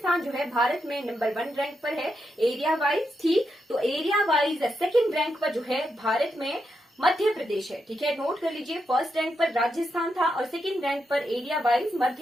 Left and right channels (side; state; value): both; normal; correlation 0.84